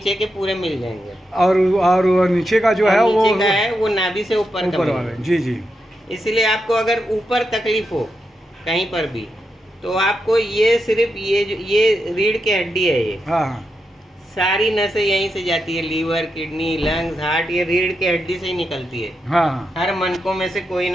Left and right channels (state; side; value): normal; both; correlation 0.85